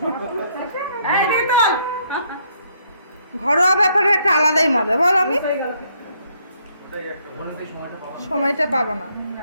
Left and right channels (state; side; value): inverted; both; correlation -0.70